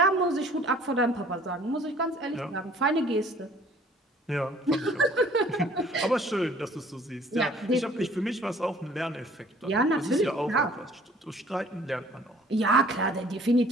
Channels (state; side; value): normal; both; correlation 0.54